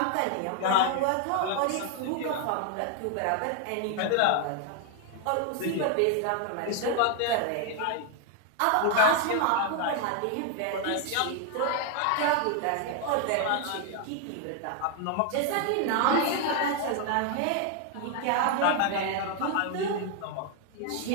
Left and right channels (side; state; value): both; different; correlation 0.00